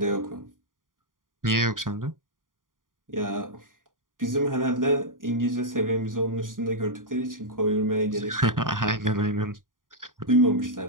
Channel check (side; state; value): left; late; 0.89 ms